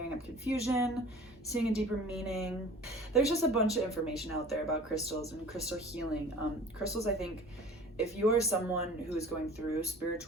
up confusion, seeing a deeper meaning. There's just a bunch of information out there about crystals and crystal healing. Crystals, I think, if you are someone who is going through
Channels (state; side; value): normal; both; correlation 0.44